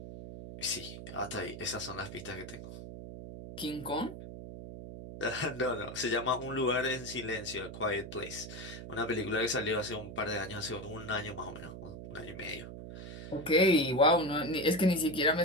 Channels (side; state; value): right; noise; hum, 10 dB below the sound